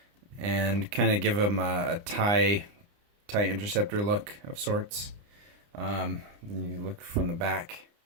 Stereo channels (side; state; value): left; late; 29 ms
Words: and kind of give them a TIE interceptor look of sorts. You look from the back